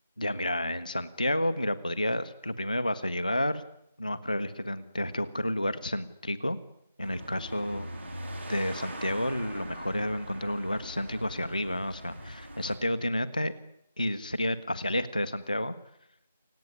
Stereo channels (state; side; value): inverted; both; correlation -0.89